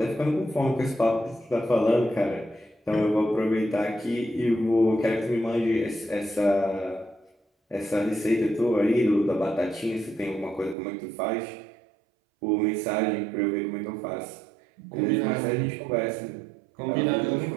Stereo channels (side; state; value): left; drops out; at 10.8 s